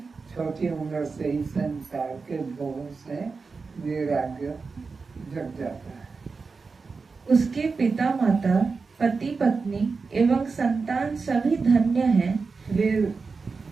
छोटी उम्र से ही संसार के भोगों से वैराग्य जग जाता है। उसके पिता माता, पति पत्नी एवं संतान सभी धन्य हैं। वे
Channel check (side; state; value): left; quieter; 4.6 dB